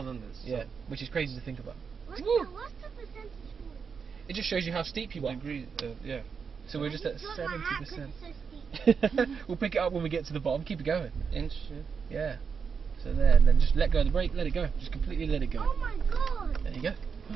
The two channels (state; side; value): quieter; left; 6.0 dB